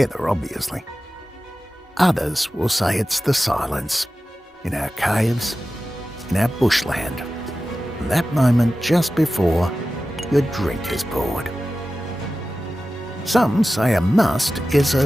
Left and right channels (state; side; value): normal; both; correlation 0.94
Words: obviously. Others will say it's the silence, in our caves, in our bushland, that moment just before your drink is poured. Some say a must is a